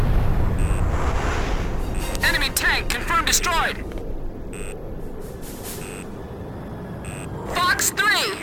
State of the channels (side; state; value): both; identical; correlation 1.00